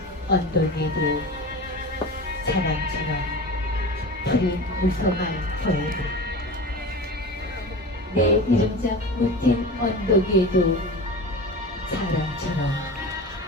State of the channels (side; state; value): both; normal; correlation 0.31